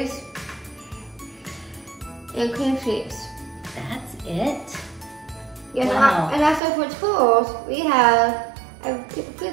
and cream cheese. That's it? Yes, Wow. and also for tools, we have a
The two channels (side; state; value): left; drops out; at 6.6 s